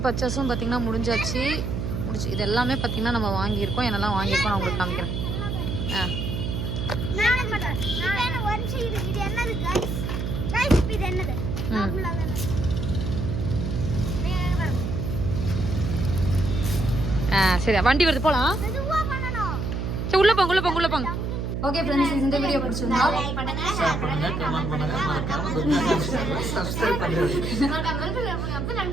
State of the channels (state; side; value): noise; right; hum, 2 dB below the sound